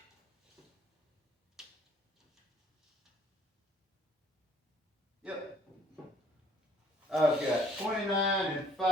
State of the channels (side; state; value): both; normal; correlation 0.60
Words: Yep. I've got 29